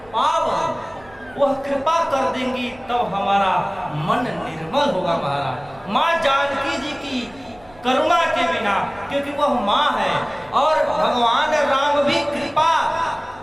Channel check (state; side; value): noise; right; rumble, 26 dB below the sound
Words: पावन। वह कृपा कर देंगी तब हमारा मन निर्मल होगा महाराज। माँ जानकी जी की करुणा के बिना, क्योंकि वह माँ है और भगवान राम भी कृपा